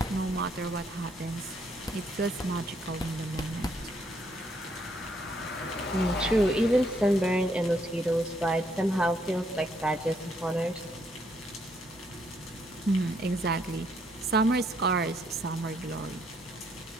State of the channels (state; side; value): normal; both; correlation 0.71